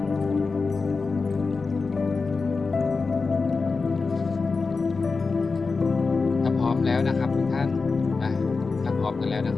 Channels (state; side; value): quieter; right; 4.3 dB